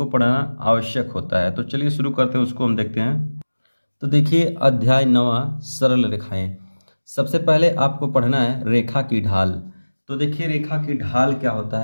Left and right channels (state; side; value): inverted; both; correlation -1.00